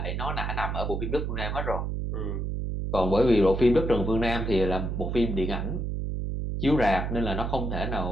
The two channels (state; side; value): noise; right; hum, 2 dB below the sound